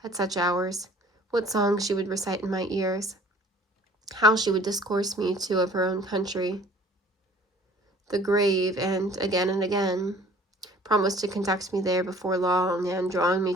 at such hours, what songs she would recite in my ears, how she would discourse me too of her own country, the grave, and again, promised to conduct me there before long, and, drawing me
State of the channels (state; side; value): normal; both; correlation 0.52